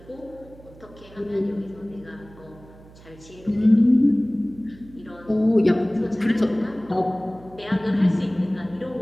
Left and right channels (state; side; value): noise; right; hum, 22 dB below the sound